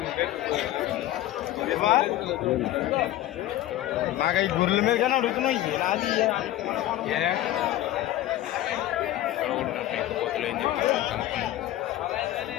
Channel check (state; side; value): quieter; right; 14.3 dB